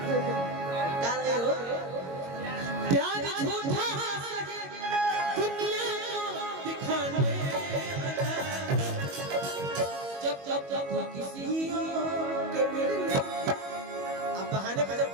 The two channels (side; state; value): left; late; 22 ms